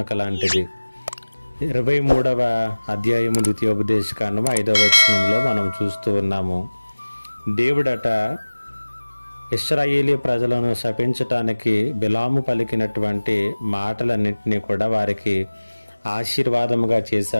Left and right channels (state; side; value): inverted; both; correlation -1.00